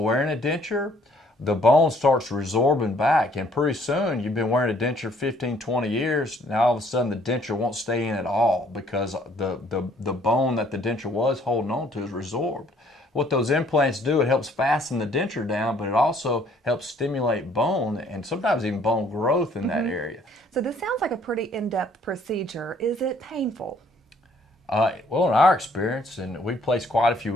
a denture, the bone starts resorbing back, and pretty soon you've been wearing a denture 15, 20 years, now all of a sudden the denture won't stay in at all because the bone that the denture was holding on to is resorbed. What those implants do, it helps fasten the denture down, but it also helps stimulate bone and sometimes even bone growth in that area. So this sounds like a pretty in-depth procedure. Is it painful? Well, in our experience, and we've placed quite a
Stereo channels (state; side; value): normal; both; correlation 0.61